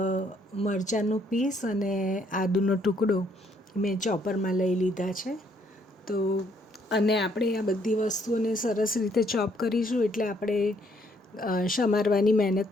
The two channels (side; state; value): both; normal; correlation 0.68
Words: મરચાંનું પીસ અને આદુનો ટુકડો મેં ચોપરમાં લઈ લીધા છે. તો અને આપણે આ બધી વસ્તુઓને સરસ રીતે ચોપ કરીશું, એટલે આપણે સમારવાની